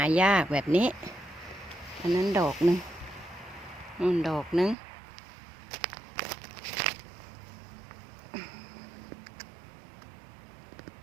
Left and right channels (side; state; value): left; drops out; at 4.8 s